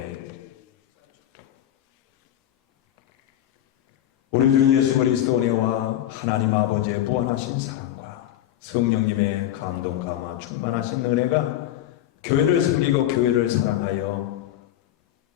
우리 주 예수 그리스도 은혜와 하나님 아버지의 무한하신 사랑과 성령님의 감동 감화 충만하신 은혜가 교회를 섬기고 교회를 사랑하여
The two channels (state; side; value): quieter; right; 12.2 dB